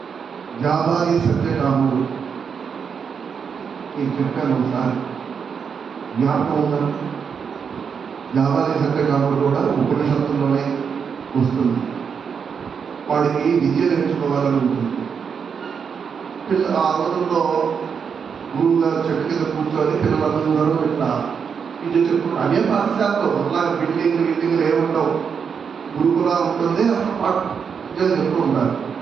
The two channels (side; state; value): left; quieter; 6.5 dB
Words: జాబాలి సత్యకాముడు నేను చెప్పాను ఒకసారి, జ్ఞాపకం ఉందా? జాబాలి సత్యకాముడు కూడా ఉపనిషత్తుల్లోనే వస్తుంది. వాడికి విద్య నేర్చుకోవాలని ఉంటుంది. ఆ రోజుల్లో గురువు గారు చెట్టు కింద కూర్చొని పిల్లలందరూ ఇట్లా ఇది చెప్పు అదే పాఠశాలలో అలాగే బిల్డింగ్లు ఏముండవు, గురుకులా ఉంటుంది, అక్కడ పాఠం చెప్తూ ఉంటారు.